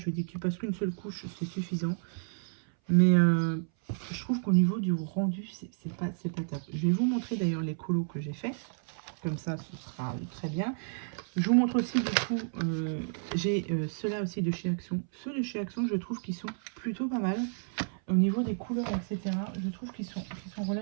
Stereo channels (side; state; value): left; silent; 57 dB below the other